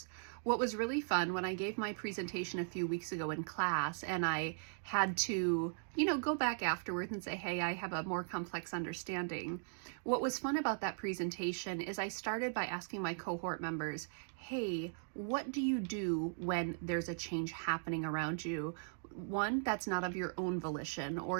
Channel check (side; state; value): left; silent; digital silence